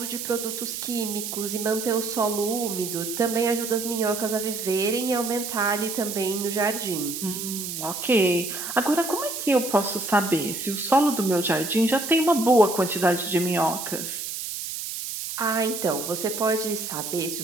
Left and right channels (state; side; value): noise; right; hiss, 6 dB below the sound